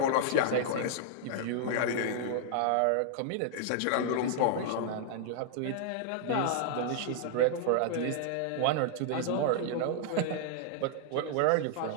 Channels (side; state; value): both; different; correlation -0.01